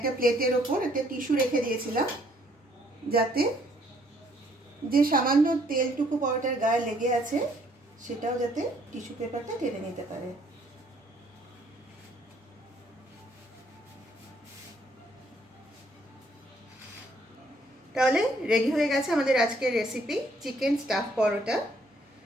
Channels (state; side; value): normal; both; correlation 0.65